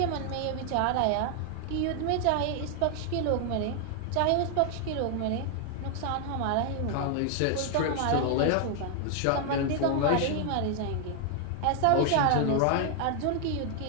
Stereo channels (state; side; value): different; both; correlation 0.00